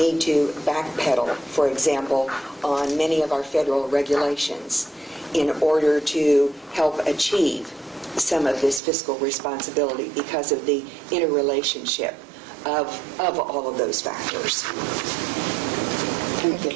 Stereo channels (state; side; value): drops out; left; at 8.8 s